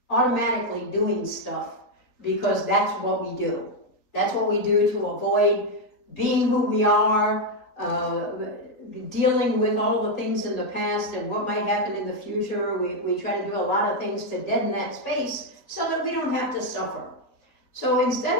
automatically doing stuff because that's what we do. That's what we do to avoid being who we are, dealing with all the things in the past and what might happen in the future. We try to do a lot of things to deaden that space so that we don't have to suffer. So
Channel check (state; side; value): late; right; 4.1 ms